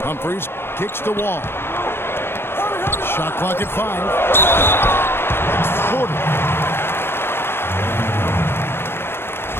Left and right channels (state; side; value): late; right; 0.11 ms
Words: Humphries kicks the wall. Shot clock at 5. Porter.